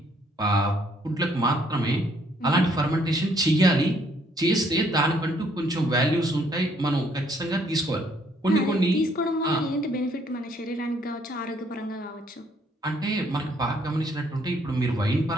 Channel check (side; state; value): both; normal; correlation 0.66